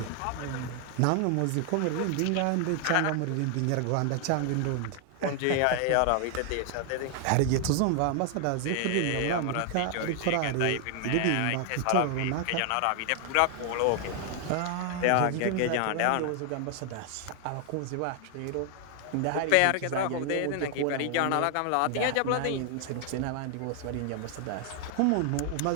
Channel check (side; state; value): both; different; correlation 0.00